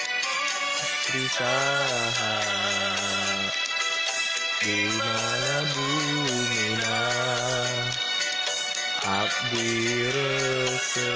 Trisaha di mana bumina abdi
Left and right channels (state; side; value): identical; both; correlation 1.00